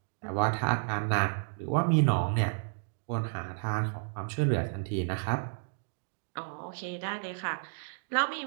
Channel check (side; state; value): left; silent; digital silence